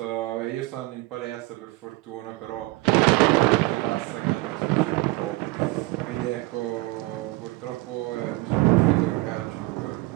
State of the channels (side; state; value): left; quieter; 21.2 dB